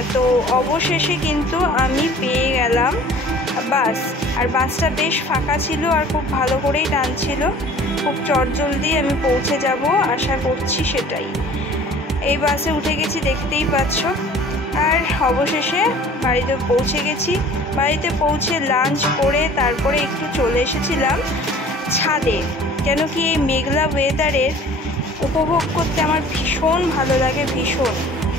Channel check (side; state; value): both; normal; correlation 0.48